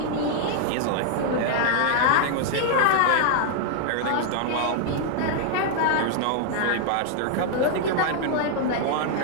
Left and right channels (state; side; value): different; both; correlation -0.01